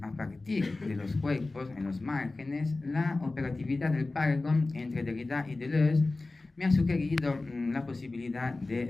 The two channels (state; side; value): quieter; right; 3.3 dB